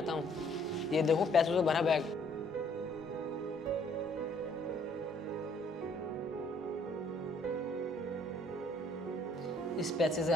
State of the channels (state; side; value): normal; both; correlation 0.63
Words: हूँ। ये देखो पैसों से भरा बैग। इस पैसे से